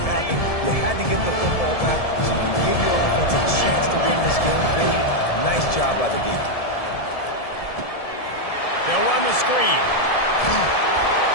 happen. You had to get the football back so you can give your offense a chance to win this game. Really nice job by the defense. They'll run the screen.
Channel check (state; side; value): late; right; 1.7 ms